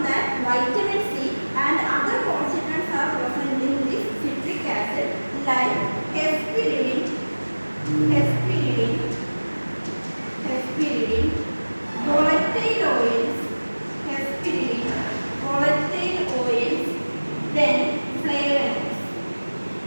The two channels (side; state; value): both; inverted; correlation -1.00